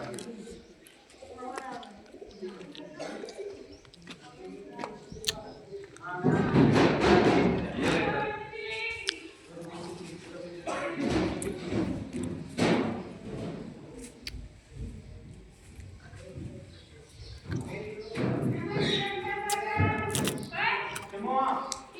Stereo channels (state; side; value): identical; both; correlation 1.00